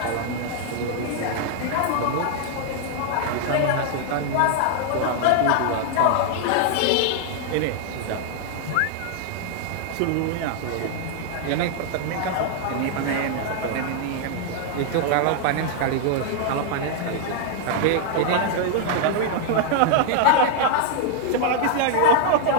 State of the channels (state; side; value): different; both; correlation 0.00